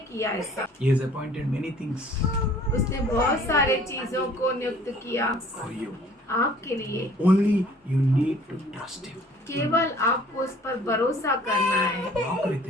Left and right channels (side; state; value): both; normal; correlation 0.53